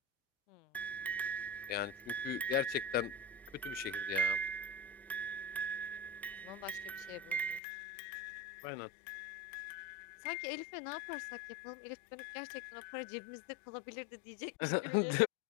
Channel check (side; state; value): right; drops out; at 7.6 s